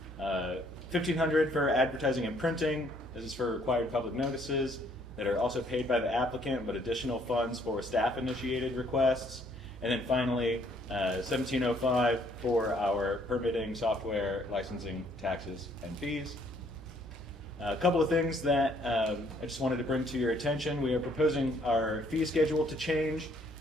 $1,500 for advertising and printing. This is for required public notices that are also paid by the applicant, but additional funds for staff-initiated requests. And then finally, $1,705 for our permitting, software, licensing, taxes, and fees. A couple of things that I just wanted to bring to your attention. We are proposing our fee schedule to change.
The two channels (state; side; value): normal; both; correlation 0.65